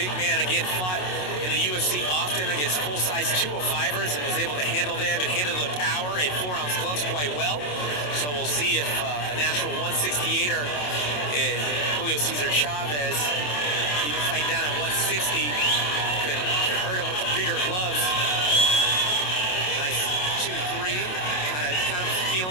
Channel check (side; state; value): right; late; 27 ms